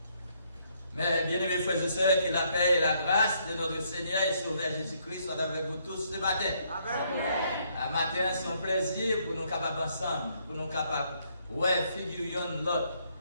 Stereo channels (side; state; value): both; inverted; correlation -0.71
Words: Mais bien-aimés frères et sœurs, que la paix et la grâce de notre Seigneur et Sauveur Jésus-Christ soient avec vous tous ce matin. Amen. Un matin, c'est un plaisir pour nous capables ensemble, pour nous capables, ouais, figurions l'autre.